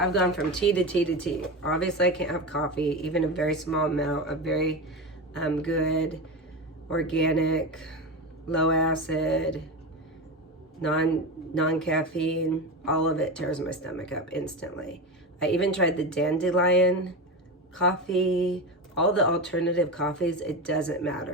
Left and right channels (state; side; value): normal; both; correlation 0.21